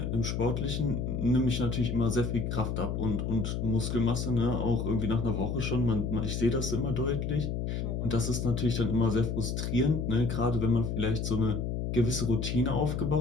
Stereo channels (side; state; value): left; noise; hum, 2 dB below the sound